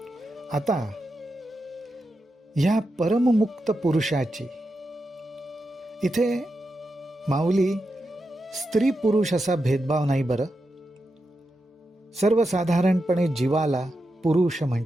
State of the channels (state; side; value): normal; both; correlation 0.88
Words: आता ह्या परममुक्त पुरुषाची इथे माऊली स्त्री पुरुष असा भेदभाव नाही बरं. सर्वसाधारणपणे जीवाला पुरुष